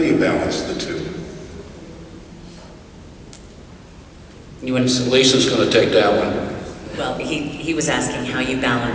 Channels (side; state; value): both; identical; correlation 1.00